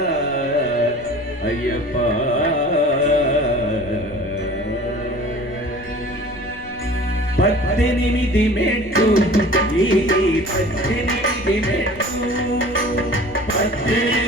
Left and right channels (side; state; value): left; noise; rumble, 19 dB below the sound